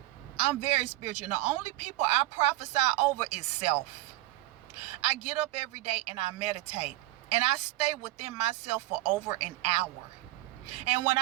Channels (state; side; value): quieter; left; 17.4 dB